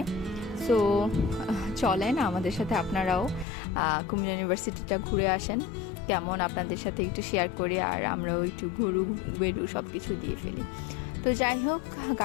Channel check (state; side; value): drops out; right; at 3.5 s